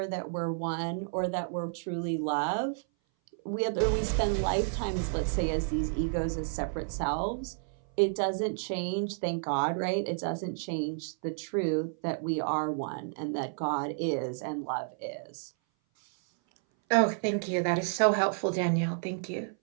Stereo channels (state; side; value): silent; left; 57 dB below the other